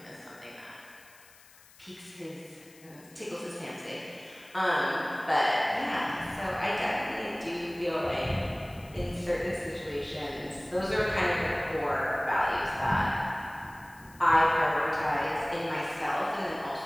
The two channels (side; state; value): left; noise; hiss, 24 dB below the sound